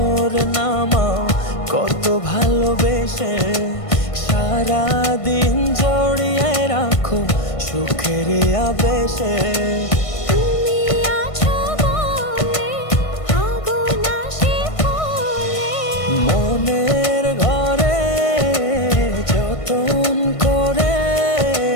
নামাও কত ভালোবেসে, সারাদিন জড়িয়ে রাখো সুখের আবেশে। তুমি আছো বলে আগুন আসে ফলে, মনের ঘরে যতন করে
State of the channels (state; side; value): late; right; 1.5 ms